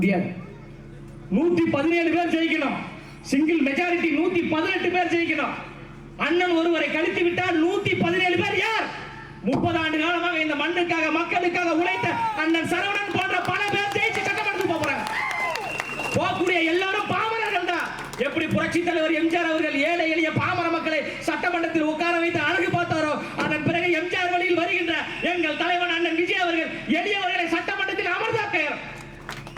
117 பேர் ஜெயிக்கணும், சிங்கிள் மெஜாரிட்டி 118 பேர் ஜெயிக்கணும். அண்ணன் ஒருவரை கழித்து விட்டால் 117 பேர் யார்? 30 ஆண்டு காலமாக இந்த மண்ணுக்காக மக்களுக்காக உழைத்த அண்ணன் சரவணன் போன்ற பல பேர் ஜெயிச்சு சட்டமன்றத்துக்கு போறாங்க. போகக்கூடிய எல்லாரும் பாமரர்கள் தான். எப்படி புரட்சி தலைவர் எம்ஜிஆர் அவர்கள் ஏழை எளிய பாமர மக்களை சட்டமன்றத்தில் உட்கார வைத்து அழகு பார்த்தாரோ, அதன் பிறகு எம்ஜிஆர் வழியில் வருகின்ற எங்கள் தலைவன் அண்ணன் விஜய் அவர்கள் எளியவர்களை சட்டமன்றத்தில் அமர்ந்தாக்க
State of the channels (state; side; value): identical; both; correlation 1.00